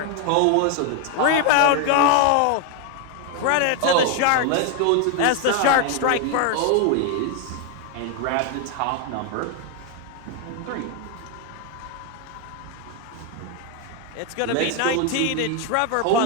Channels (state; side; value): different; both; correlation 0.01